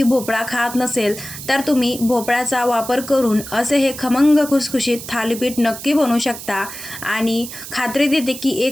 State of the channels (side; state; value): right; noise; hiss, 11 dB below the sound